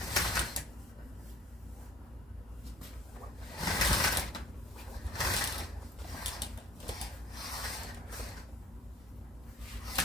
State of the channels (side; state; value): both; normal; correlation 0.52